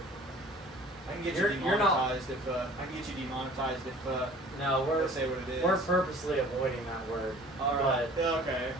I can get you demonetized if no, we're say what it is. We're purposely avoiding that word. All right. Okay.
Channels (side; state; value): both; normal; correlation 0.48